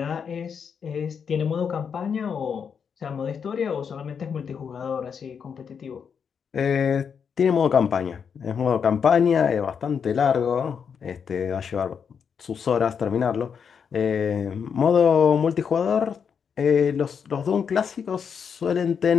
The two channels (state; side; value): quieter; right; 6.8 dB